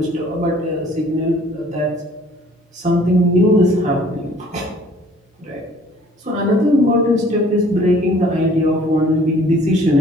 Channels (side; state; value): both; normal; correlation 0.55